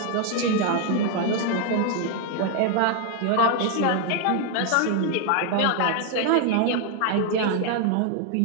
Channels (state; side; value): different; both; correlation 0.00